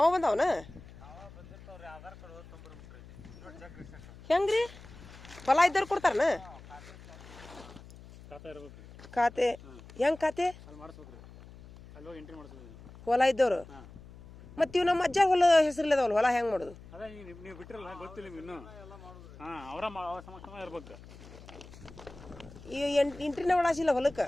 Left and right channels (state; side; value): noise; left; hum, 18 dB below the sound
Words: ಬಂದವನ ಹೆಂಗ್ರಿ ಹೊಲ ಇದ್ದವ್ರು ಕೊಡ್ತಾರನ ಖಾತೆ ಹೆಂಗ್ ಖಾತೆ ಹೊಲ ಇದ್ದವ್ರು ಮತ್ತೆ ಇವ್ ನಮ್ಮ ಅಜ್ಜ ಹೊಲ ಹೆಸರಿಲ್ಲದವಲ್ಲ ಹೊಲ ಹೆಂಗ್ ಮಾಡೋದು ನೀವು ಬಿಟ್ಟಿರಲ್ಲ ಗೊತ್ತಿಲ್ಲ ಇನ್ನು ಅವರ ಸಮಕ್ಷಮ ಇರ್ಬೇಕು ಈ ಎಂಟ್ರಿನ ಒಳಸಿಲ್ಲ ಹೊಲಕ್ಕೆ